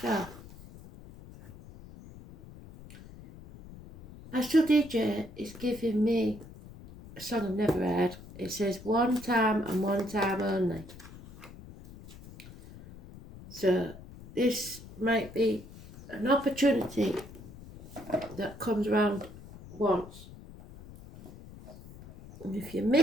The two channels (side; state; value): left; noise; rumble, 17 dB below the sound